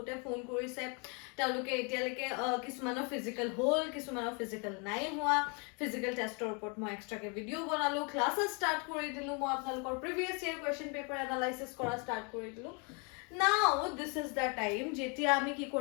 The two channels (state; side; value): quieter; right; 34.4 dB